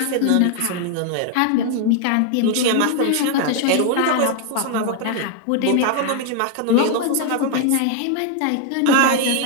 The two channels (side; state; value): both; different; correlation 0.00